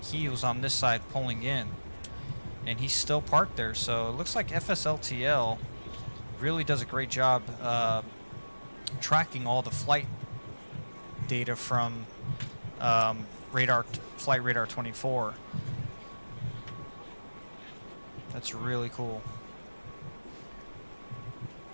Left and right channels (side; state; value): both; inverted; correlation -1.00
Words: he was on this side pulling in, and he's still parked there. So it looks like FSLTL really does a great job tracking all the flight data from Flight Radar 24. That's really cool.